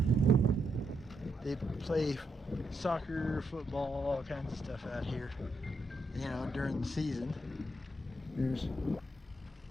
They play soccer, football, all kinds of stuff out here, during the season. There's a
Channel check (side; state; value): both; normal; correlation 0.80